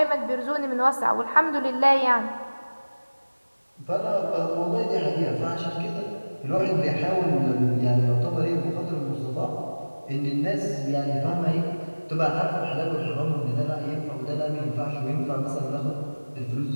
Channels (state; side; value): inverted; both; correlation -1.00